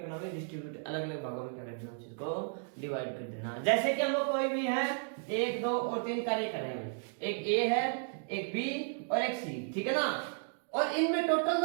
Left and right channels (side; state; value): left; silent; 55 dB below the other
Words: भाई, डिस्ट्रीब्यूट अलग अलग भागों में क्या कर देना, चीज को डिवाइड कर देना। जैसे कि हम लोग कोई भी है 1, 2 और 3 कार्य कर रहे हैं, एक ए है, एक बी और एक सी, ठीक है ना। और इनमें टोटल